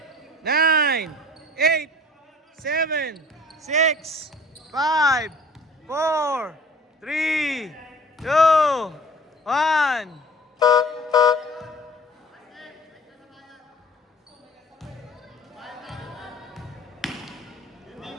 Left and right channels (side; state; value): both; normal; correlation 0.47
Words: 9, 8, 7, 6, 5, 4, 3, 2, 1.